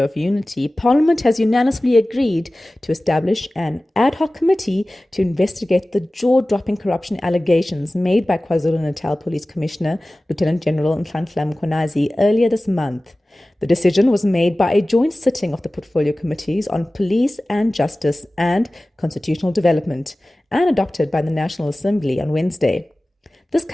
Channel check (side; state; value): both; normal; correlation 0.97